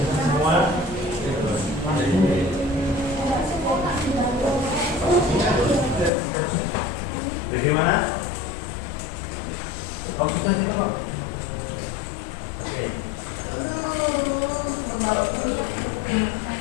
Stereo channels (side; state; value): right; drops out; at 6.1 s